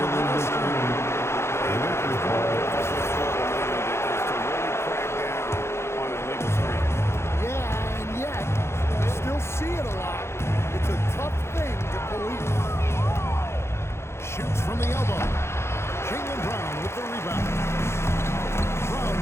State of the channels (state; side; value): late; right; 0.13 ms